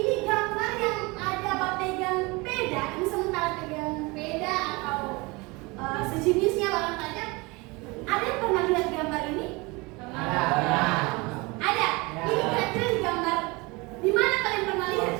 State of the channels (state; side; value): quieter; left; 25.3 dB